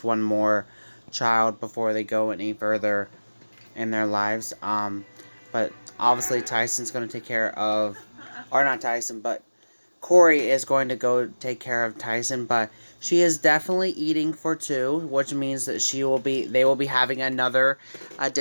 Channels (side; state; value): both; inverted; correlation -1.00